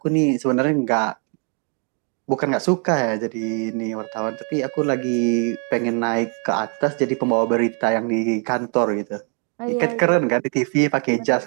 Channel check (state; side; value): quieter; left; 39.6 dB